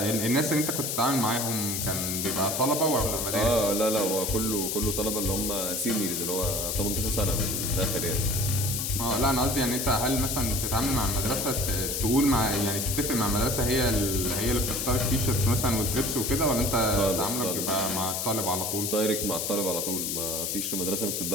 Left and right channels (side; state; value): left; noise; hiss, 1 dB below the sound